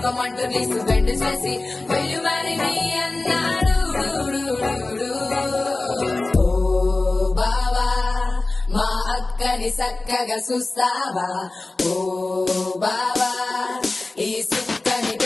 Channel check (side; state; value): right; quieter; 3.2 dB